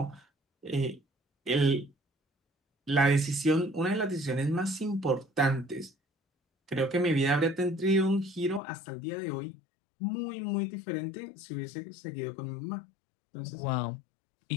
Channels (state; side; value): drops out; right; at 8.6 s